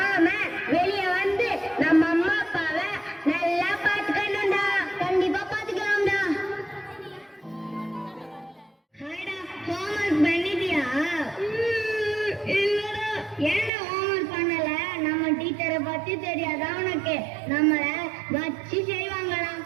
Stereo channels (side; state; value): left; drops out; at 13.7 s